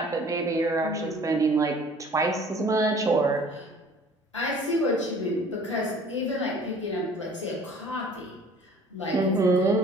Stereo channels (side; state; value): both; normal; correlation 0.51